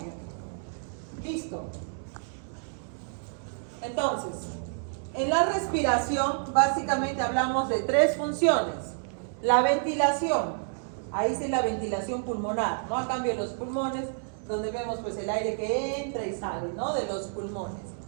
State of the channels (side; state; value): left; silent; digital silence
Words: Listo. Entonces, en la respiración básicamente hablamos de tres funciones. La ventilación, ahí sí la ventilación pulmonar, ¿no? A cambio de los pulmones, donde vemos pues el aire que entra y sale, ¿no? De los pulmones.